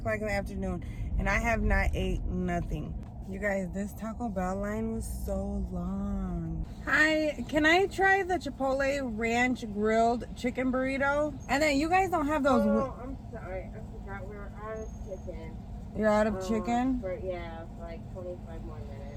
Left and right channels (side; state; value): both; identical; correlation 1.00